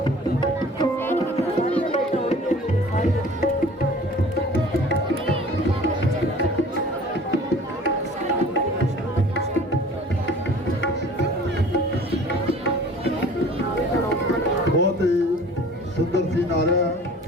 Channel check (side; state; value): both; normal; correlation 0.47